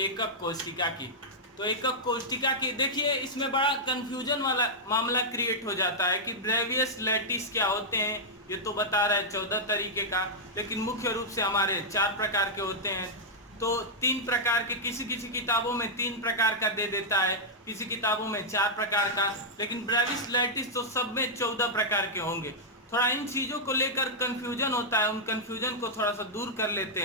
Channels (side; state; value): both; normal; correlation -0.07